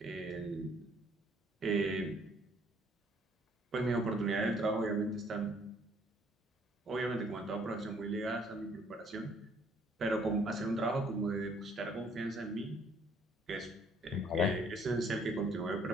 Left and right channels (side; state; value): both; normal; correlation 0.62